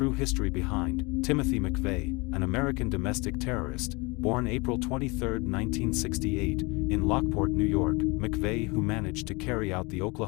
history behind Timothy Mcveigh, an American domestic terrorist, born April 23, 1968, in Lockport, New York. Mcveigh, who managed to carry out the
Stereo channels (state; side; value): quieter; right; 26.9 dB